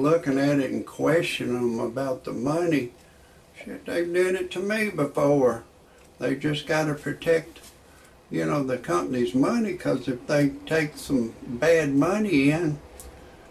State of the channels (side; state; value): both; identical; correlation 1.00